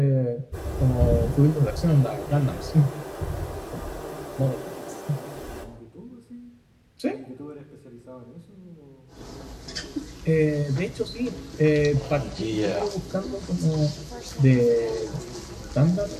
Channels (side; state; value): both; identical; correlation 1.00